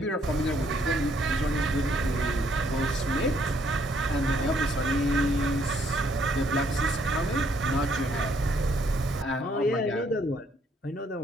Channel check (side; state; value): both; normal; correlation 0.68